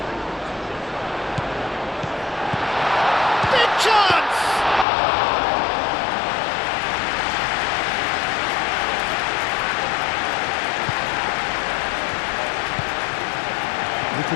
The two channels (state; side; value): drops out; right; at 4.9 s